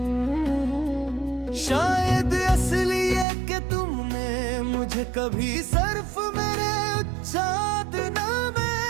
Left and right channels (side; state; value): left; drops out; at 3.2 s